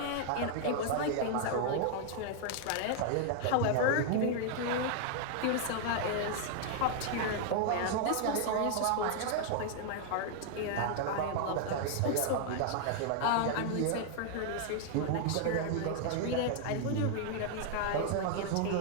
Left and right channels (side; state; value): both; different; correlation 0.00